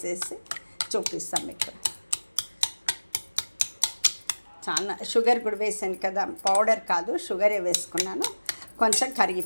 చూపిస్తాను మీకు. చాలా షుగర్ కూడా వేసాను కదా, పౌడర్ కాదు షుగరే వేసుకున్నాను. కొంచెం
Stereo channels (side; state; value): both; inverted; correlation -1.00